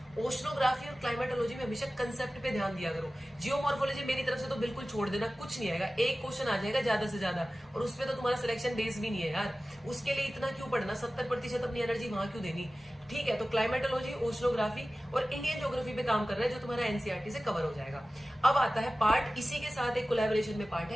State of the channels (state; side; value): normal; both; correlation 0.96